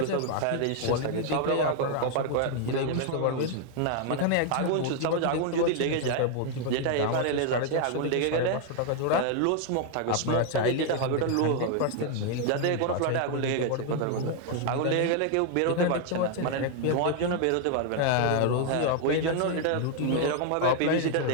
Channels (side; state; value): both; different; correlation 0.00